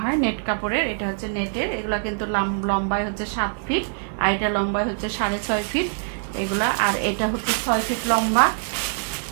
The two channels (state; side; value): silent; left; digital silence